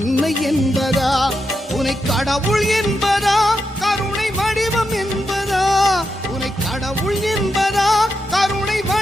என்பதா உன்னை கடவுள் என்பதா கருணை வடிவம் என்பதா உன்னை கடவுள் என்பதா கருணை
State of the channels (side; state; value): both; normal; correlation 0.85